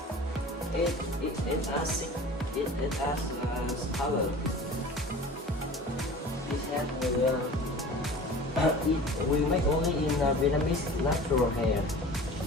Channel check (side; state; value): both; normal; correlation 0.40